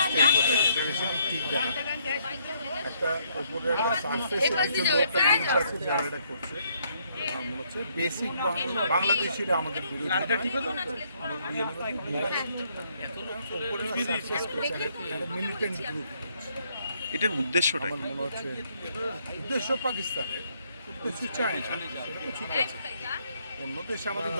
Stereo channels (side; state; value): both; inverted; correlation -0.70